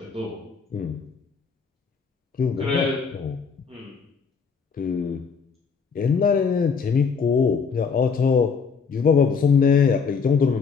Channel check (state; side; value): quieter; right; 5.7 dB